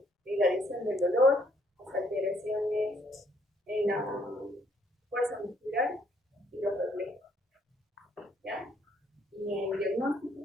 irradiación del dolor, las alteraciones en la fuerza muscular y los reflejos. ¿Ya? Y en el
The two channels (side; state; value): both; normal; correlation 0.68